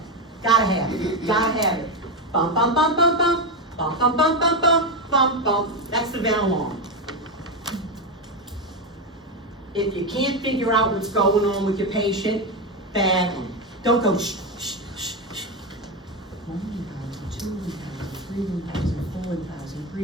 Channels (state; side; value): normal; both; correlation 0.11